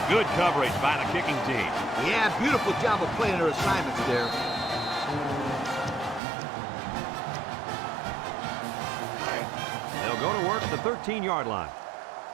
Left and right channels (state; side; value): drops out; left; at 6.2 s